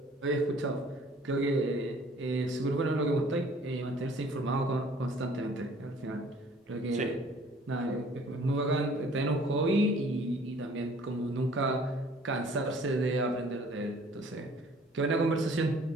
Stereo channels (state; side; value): normal; both; correlation 0.54